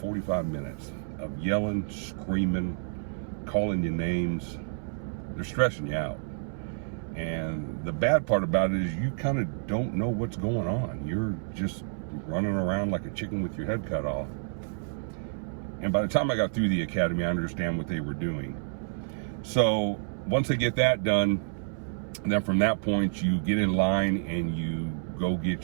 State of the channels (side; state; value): left; silent; 58 dB below the other